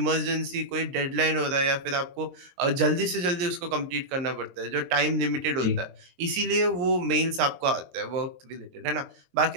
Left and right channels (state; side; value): late; left; 23 ms